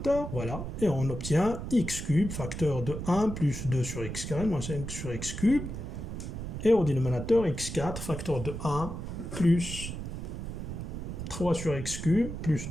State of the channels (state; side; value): noise; right; rumble, 6 dB below the sound